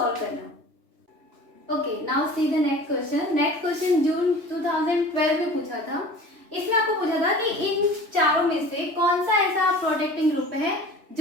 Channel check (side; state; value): left; late; 3.0 ms